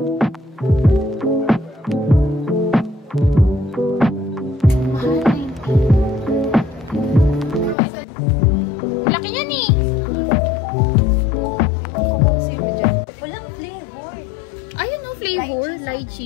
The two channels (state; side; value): drops out; right; at 7.8 s